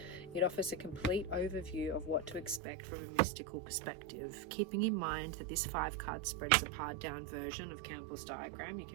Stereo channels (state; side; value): drops out; left; at 2.6 s